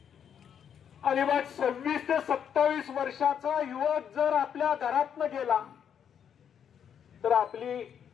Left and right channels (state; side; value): quieter; right; 8.3 dB